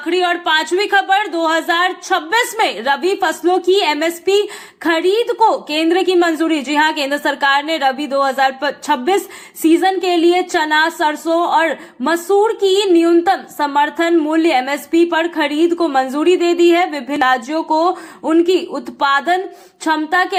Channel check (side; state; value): both; identical; correlation 1.00